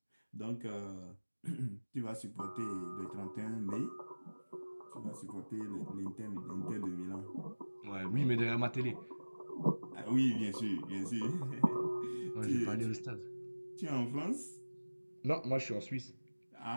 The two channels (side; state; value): both; inverted; correlation -1.00